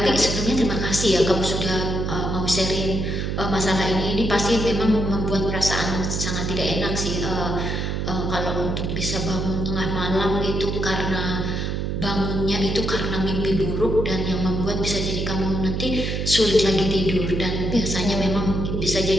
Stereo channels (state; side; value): noise; right; hum, 1 dB below the sound